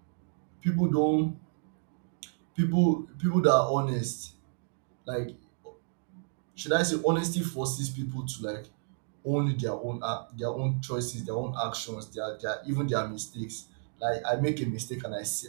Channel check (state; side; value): silent; left; digital silence